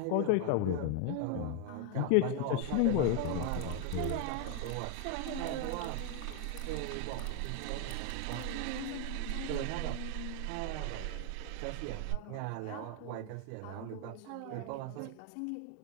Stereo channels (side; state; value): both; different; correlation 0.00